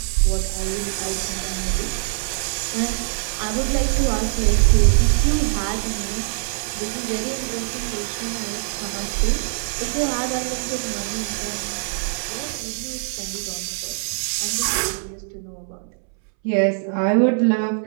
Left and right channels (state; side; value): silent; left; 64 dB below the other